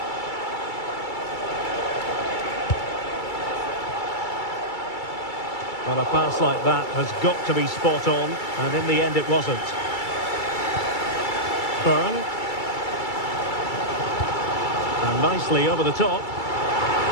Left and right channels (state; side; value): late; right; 2.3 ms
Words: Well, a pass like that has got to be spot on, and in the end it wasn't. Byrne. And nicely over the top.